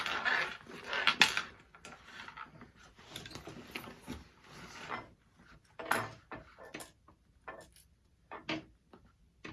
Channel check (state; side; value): identical; both; correlation 1.00